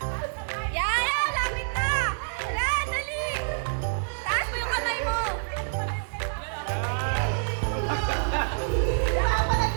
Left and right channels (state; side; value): silent; left; digital silence